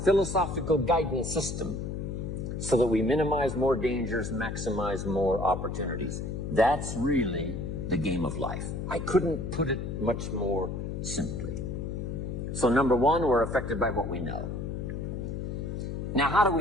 guidance system so that we minimize more dangers, maximize more opportunities. That's really the game of life. I couldn't put it much more simply. So number one, we're affected by what we know. Now, how do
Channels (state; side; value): noise; left; hum, 4 dB below the sound